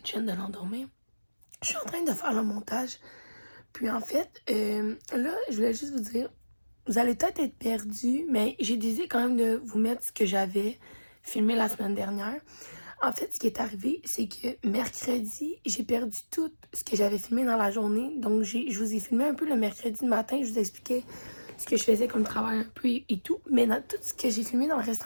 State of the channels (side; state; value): both; inverted; correlation -1.00